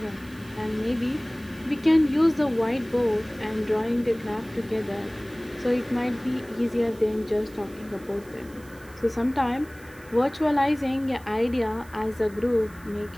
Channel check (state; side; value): noise; right; hiss, 24 dB below the sound